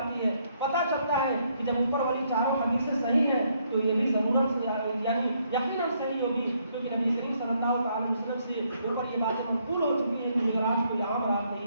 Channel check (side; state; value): both; inverted; correlation -0.72